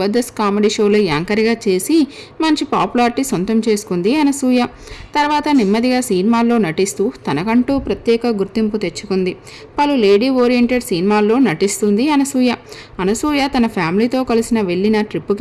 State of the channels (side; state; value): both; identical; correlation 1.00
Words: కామెడీ షోలో యాంకర్గా చేసి మంచి పాపులారిటీ సొంతం చేసుకుంది అనసూయ. తర్వాత నెమ్మదిగా సినిమాల్లో నటిస్తూ తనకంటూ ప్రత్యేక గుర్తింపు తెచ్చుకుంది. పలు లేడీ ఓరియంటెడ్ సినిమాల్లో నటిస్తుంది అనసూయ. అనసూయ తన ఫ్యామిలీతో కలిసిన వెళ్ళిన